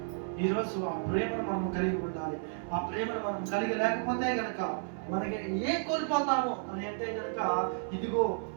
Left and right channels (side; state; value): left; silent; 56 dB below the other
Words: ఈరోజు ఆ ప్రేమను మనం కలిగి ఉండాలి. ఆ ప్రేమను మనం కలిగి లేకపోతే గనక మనకి ఏం కోల్పోతాము అని అంటే కనుక ఇదిగో